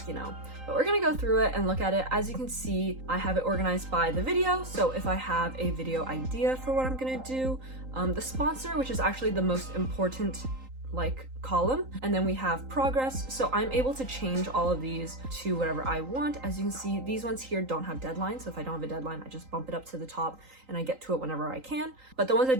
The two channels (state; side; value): late; left; 3.8 ms